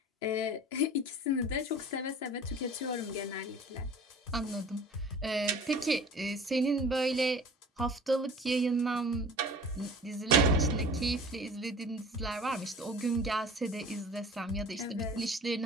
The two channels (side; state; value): both; normal; correlation 0.42